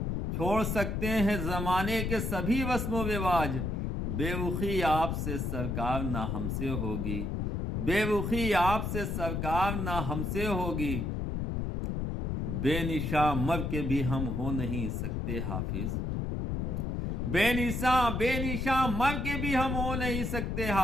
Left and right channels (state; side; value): noise; left; rumble, 1 dB below the sound